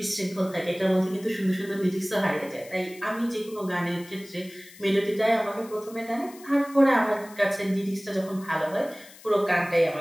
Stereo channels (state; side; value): noise; left; hiss, 21 dB below the sound